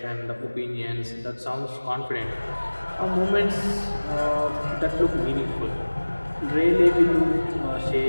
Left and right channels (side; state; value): both; inverted; correlation -1.00